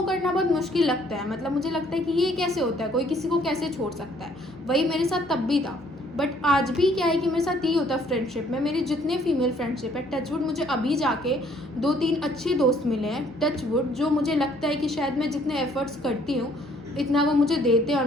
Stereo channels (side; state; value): both; normal; correlation 0.62